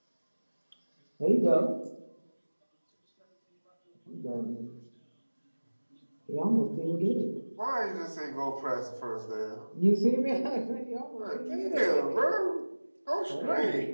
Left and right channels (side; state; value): both; inverted; correlation -1.00